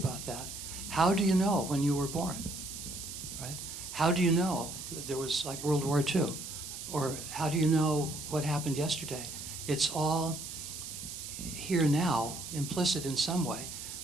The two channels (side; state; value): right; noise; hiss, 9 dB below the sound